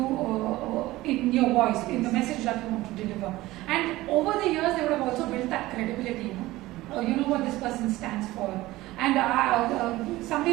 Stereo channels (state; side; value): quieter; left; 17.9 dB